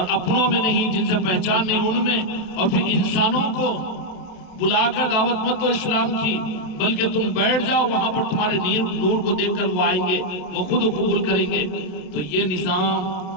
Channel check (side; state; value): right; late; 27 ms